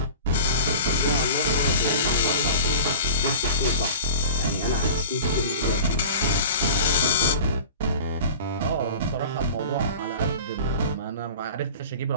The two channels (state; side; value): inverted; both; correlation -0.37